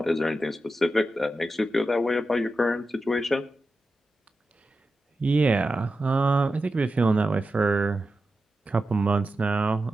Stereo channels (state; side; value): normal; both; correlation 0.91